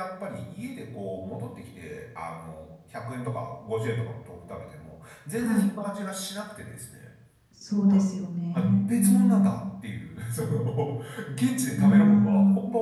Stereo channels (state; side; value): identical; both; correlation 1.00